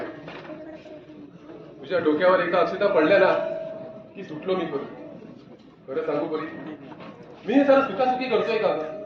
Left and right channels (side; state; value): both; identical; correlation 1.00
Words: तुझ्या डोक्यावर एकदा अक्षता पडल्या ना की सुटलो मी करू खरं सांगू परी मी हे सारं सुखासुखी करतोय का